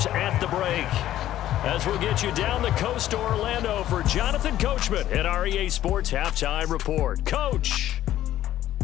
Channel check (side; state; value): right; quieter; 13.0 dB